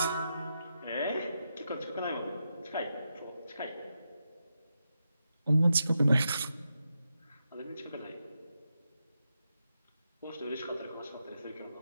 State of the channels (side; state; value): both; inverted; correlation -0.86